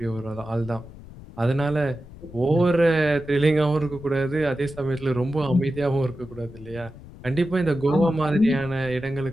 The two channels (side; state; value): left; noise; rumble, 17 dB below the sound